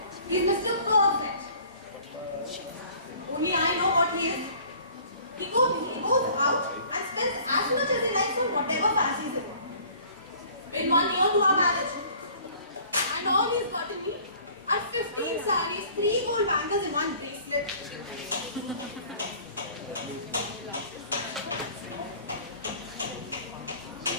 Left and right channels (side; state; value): both; inverted; correlation -0.51